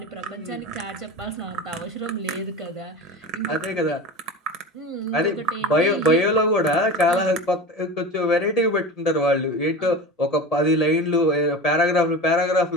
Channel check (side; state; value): both; normal; correlation 0.30